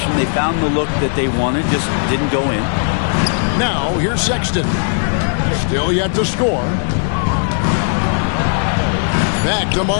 They found the look that they wanted, just didn't go in. Now, here's Sexton. Still yet to score. Back to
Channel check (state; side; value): silent; right; 69 dB below the other